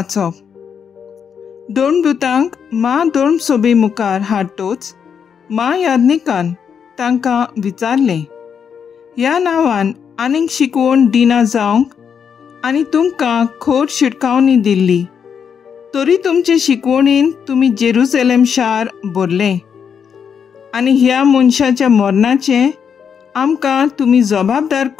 दोन दुतांक मा दोन सोबी मुखार हाडटोच याज्ञिकान तांकां विचारलें, ह्या नांवान आनीक शिकवण दिना जावंक आनी तुमकां खोट शिटकावणी दिल्ली, तरी तुमचे शिकवणीन तुमी जेरुसलेम शार भरलें आनी ह्या मनशाच्या मरणाचें आमकां तुमी जबाबदार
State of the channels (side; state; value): right; quieter; 7.2 dB